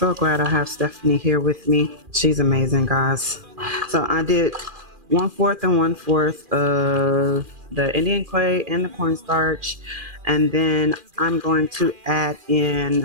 glad I have Stephanie here with me. She's amazing, guys. So I did 1/4 and 1/4 of the Indian clay and the cornstarch. And then I'm going to add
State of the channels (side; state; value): left; late; 2.4 ms